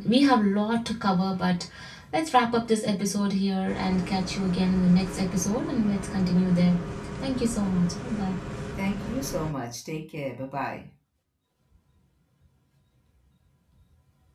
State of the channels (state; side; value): identical; both; correlation 1.00